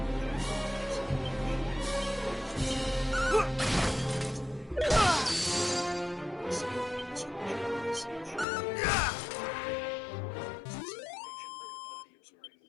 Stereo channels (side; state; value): right; drops out; at 8.5 s